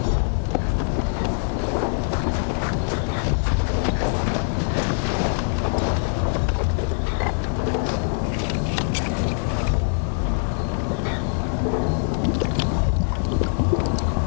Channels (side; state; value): right; silent; digital silence